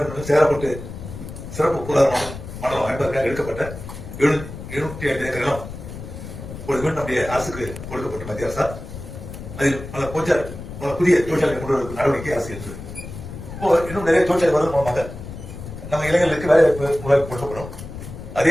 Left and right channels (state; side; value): noise; left; rumble, 11 dB below the sound